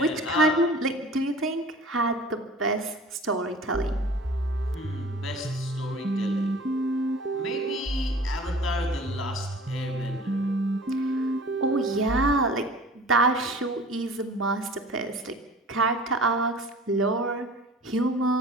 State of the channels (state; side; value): normal; both; correlation 0.44